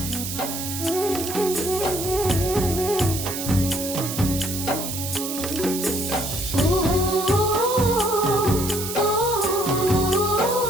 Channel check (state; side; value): noise; right; hiss, 6 dB below the sound